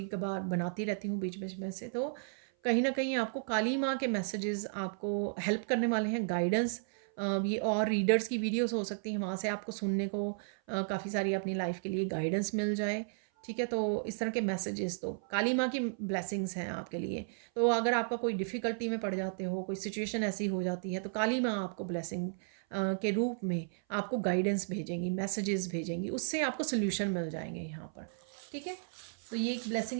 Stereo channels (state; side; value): silent; left; 55 dB below the other